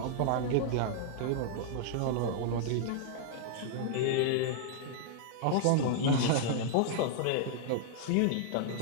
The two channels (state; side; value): different; both; correlation -0.01